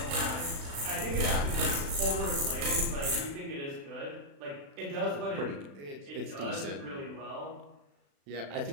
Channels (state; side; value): late; left; 36 ms